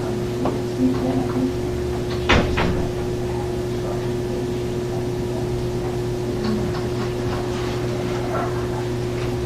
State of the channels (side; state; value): both; identical; correlation 1.00